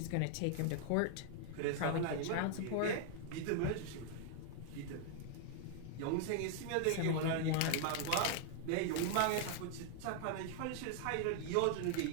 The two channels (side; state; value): both; different; correlation 0.00